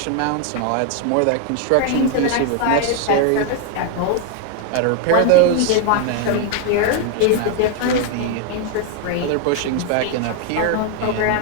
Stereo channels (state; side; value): different; both; correlation 0.00